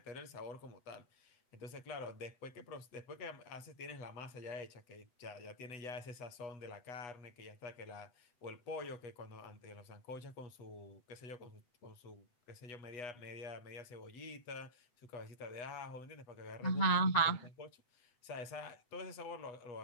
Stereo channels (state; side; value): late; right; 7.9 ms